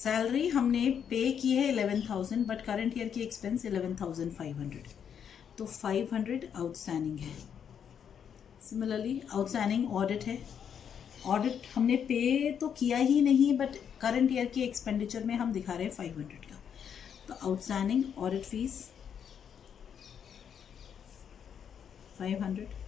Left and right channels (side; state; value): right; quieter; 8.0 dB